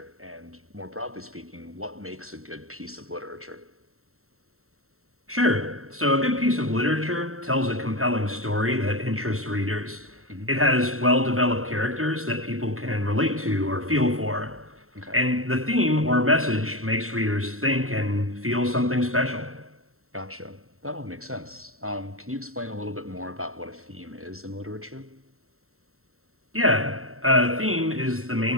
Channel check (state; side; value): late; left; 0.63 ms